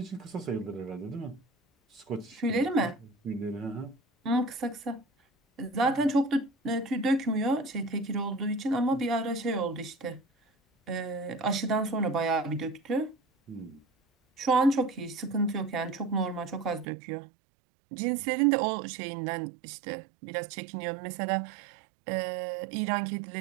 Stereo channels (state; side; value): drops out; left; at 16.9 s